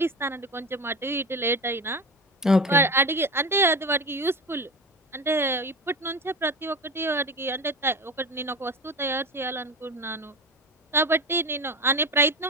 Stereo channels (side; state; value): both; normal; correlation 0.27